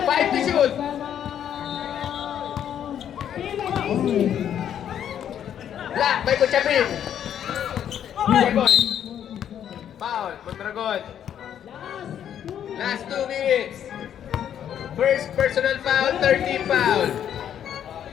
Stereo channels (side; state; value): right; quieter; 9.7 dB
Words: 5 to shoot. Black, may kutsapin. Boy. Foul, Mondragon. Last 2 minutes. First personal foul, 13 foul.